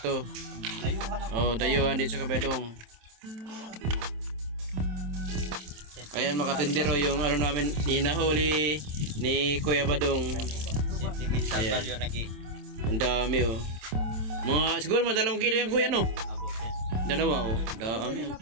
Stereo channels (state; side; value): late; left; 27 ms